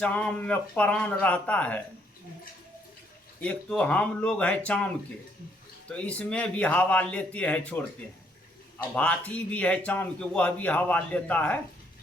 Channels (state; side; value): normal; both; correlation 0.70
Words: में प्राण रहता है। एक तो हम लोग हैं चाम के, तो इसमें भी हवा लेते हैं छोड़ते हैं। अब हाथी भी है चाम के, वह भी हवा लेता है।